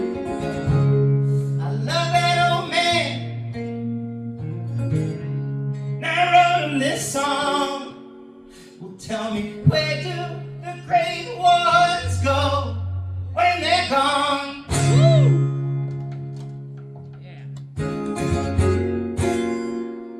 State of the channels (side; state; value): both; identical; correlation 1.00